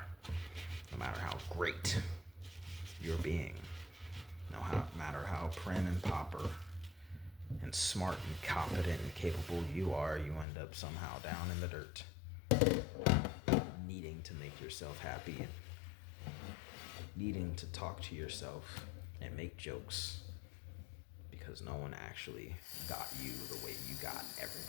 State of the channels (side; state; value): right; drops out; at 10.5 s